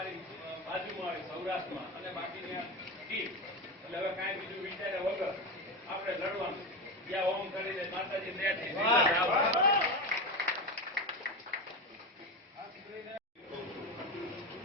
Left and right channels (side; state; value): both; normal; correlation 0.18